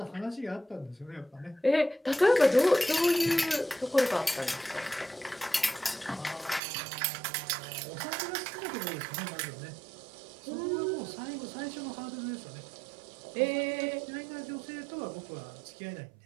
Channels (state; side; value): drops out; left; at 6.6 s